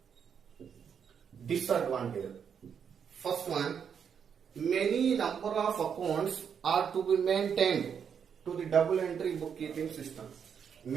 Disadvantage. First one, many number of accounts are to be maintained to the double entry bookkeeping system.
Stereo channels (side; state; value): left; quieter; 7.4 dB